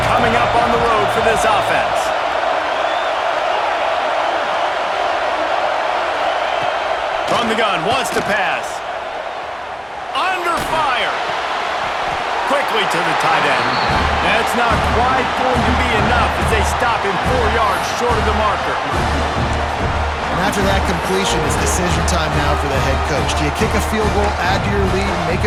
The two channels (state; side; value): identical; both; correlation 1.00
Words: coming up on the road for this offense. From the gun, wants to pass. Under fire. Quickly to the tight end. That's not quite going to be enough as they stop him 4 yards short of the marker. And after that completion, it's decision time now for the head coach. Do you kick a field goal, add to your lead, and make